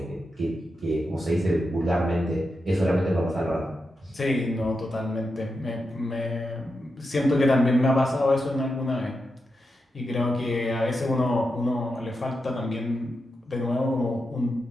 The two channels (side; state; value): both; normal; correlation 0.87